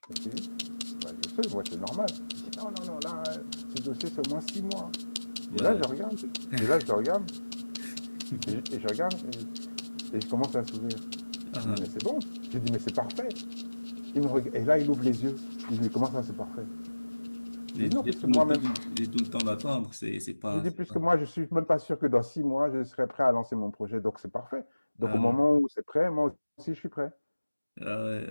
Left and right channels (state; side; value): inverted; both; correlation -1.00